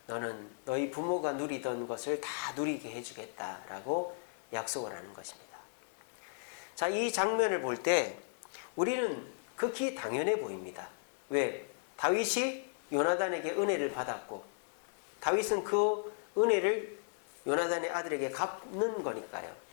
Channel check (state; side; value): silent; right; digital silence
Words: 너는 너희 부모가 누리던 것을 다 누리게 해주겠다라고 약속을 하는 것입니다. 자, 이 장면을 볼 때 우리는 극히 당연해 보입니다. 왜? 다윗이 요나단에게 은혜를 받았고 다윗은 그 은혜를 요나단의 아들에게 갚는 거니까요.